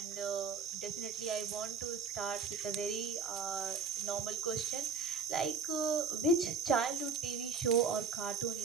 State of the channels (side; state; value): left; quieter; 5.1 dB